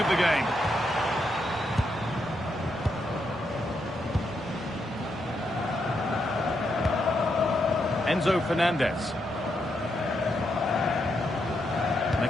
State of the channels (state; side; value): normal; both; correlation 0.81